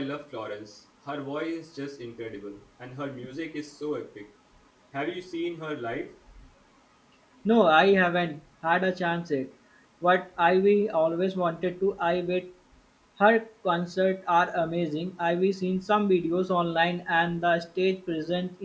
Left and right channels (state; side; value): identical; both; correlation 1.00